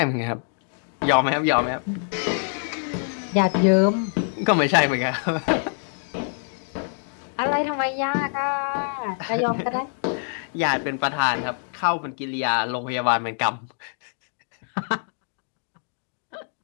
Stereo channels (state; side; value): silent; right; 58 dB below the other